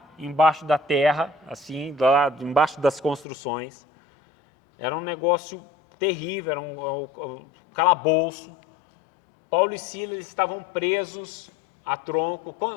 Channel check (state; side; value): drops out; right; at 3.2 s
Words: embaixo da terra, assim, lá embaixo das construções. Era um negócio terrível, era um calabouço. Paulo e Silas estavam presos a tronco.